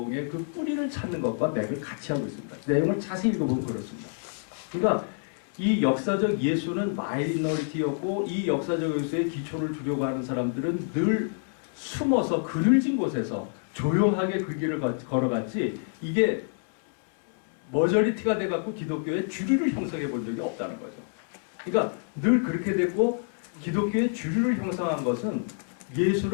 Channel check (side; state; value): right; silent; 60 dB below the other